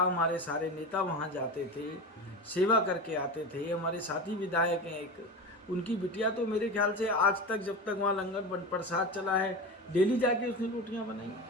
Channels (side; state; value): both; normal; correlation 0.25